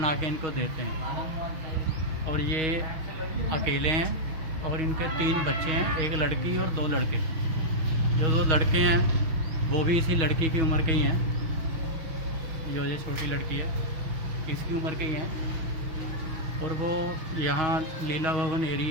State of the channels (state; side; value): late; left; 6.3 ms